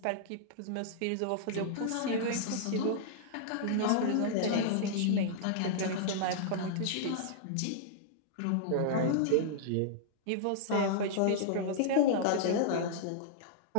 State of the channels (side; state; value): both; different; correlation -0.02